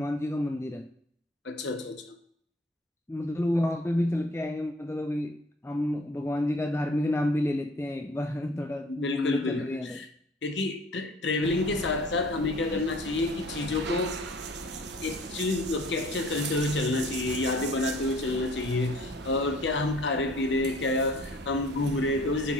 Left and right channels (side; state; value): both; normal; correlation 0.52